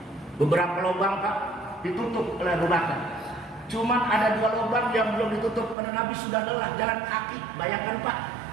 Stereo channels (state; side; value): drops out; left; at 5.8 s